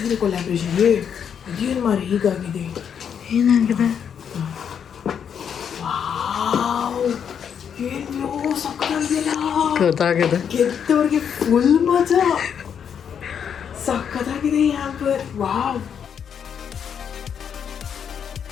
ಕೊಲ್ಯಾಬ್ರೇಷನ್ ಅದೇನು ಮಾರಿ ಹೀಗಾಗಿದೆ. ಏನಾಗಿದೆ? ಏನು ಸಕ್ಕತ್ತಾಗಿದೆಯಲ್ಲ, ಗೊತ್ತಾಗಿದೆ. ಗೆದ್ದವ್ರಿಗೆ ಫುಲ್ ಮಜಾ, ಸಕ್ಕತ್ತಾಗಿದೆ ಈ ಹ್ಯಾಂಪರ್. ವಾವ್.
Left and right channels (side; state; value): right; quieter; 7.8 dB